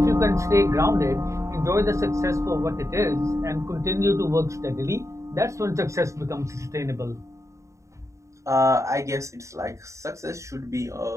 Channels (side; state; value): left; late; 0.15 ms